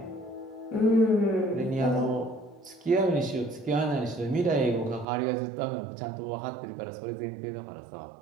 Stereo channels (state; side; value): drops out; left; at 5.1 s